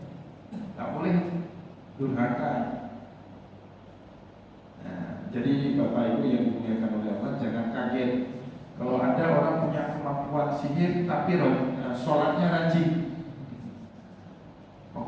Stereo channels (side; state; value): both; identical; correlation 1.00